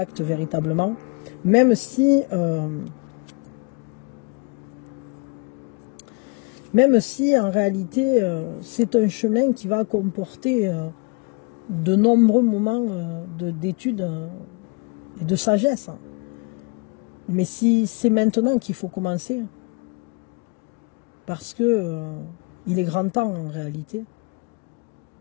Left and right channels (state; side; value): quieter; right; 30.9 dB